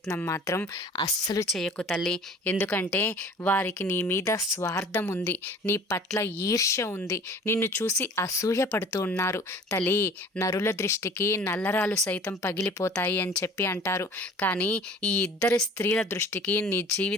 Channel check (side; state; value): both; normal; correlation 0.47